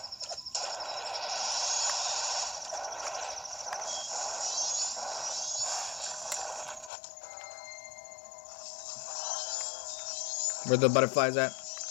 Where the butterflies at?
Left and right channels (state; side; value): drops out; right; at 6.9 s